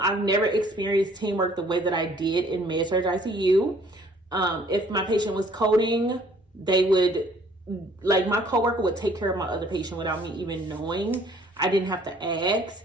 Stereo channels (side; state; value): both; normal; correlation 0.58